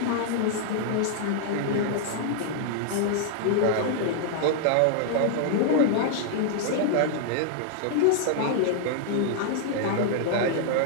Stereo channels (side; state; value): both; different; correlation -0.01